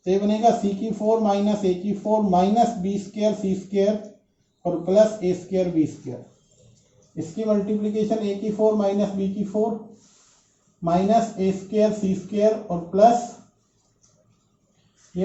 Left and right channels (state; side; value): identical; both; correlation 1.00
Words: तो ये बनेगा सी की 4 माइनस ए की 4 minus B square C square और plus A square B square, इसकी मल्टीप्लीकेशन ए की 4 माइनस बी की 4 minus A square C square और प्लस